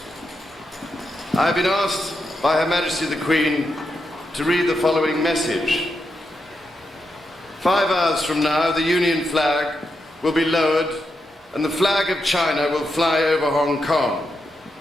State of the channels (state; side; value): normal; both; correlation 0.85